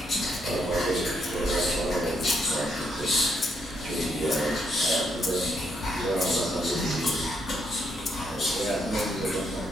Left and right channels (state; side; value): normal; both; correlation 0.76